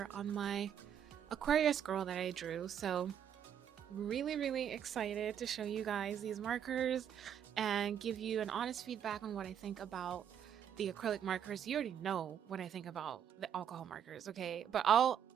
on my Aquarius girl that I drew. So really excited to show you guys these markers and give you an honest feedback on what I think about the acrylic markers. You already know what I think about the alcohol markers, okay? But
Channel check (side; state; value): left; quieter; 9.0 dB